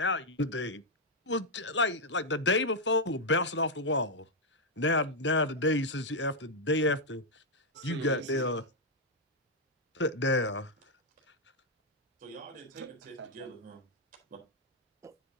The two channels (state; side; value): normal; both; correlation -0.01